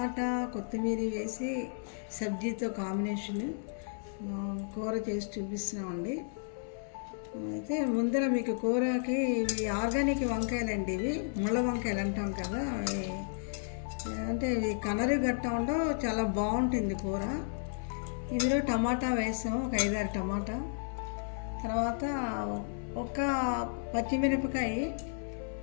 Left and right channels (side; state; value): right; silent; 56 dB below the other